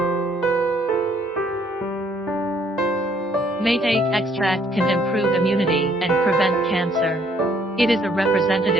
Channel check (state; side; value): normal; both; correlation 0.65